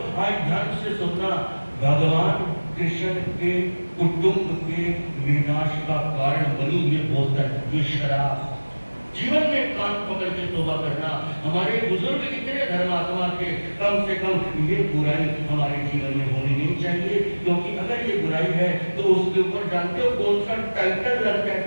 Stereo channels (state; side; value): inverted; both; correlation -1.00